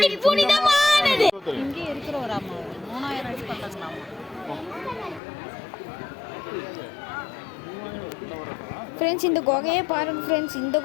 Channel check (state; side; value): drops out; right; at 5.2 s